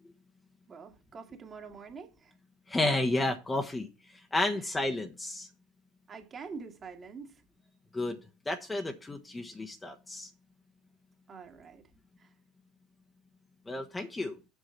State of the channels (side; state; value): both; normal; correlation 0.84